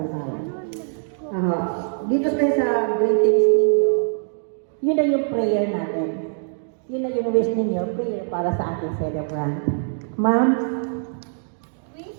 Dito tayo sa greetings ninyo, yun na yung prayer natin. Yun na yung wish ninyo, prayer para sa ating celebrant. Ma'am?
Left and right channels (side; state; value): left; silent; digital silence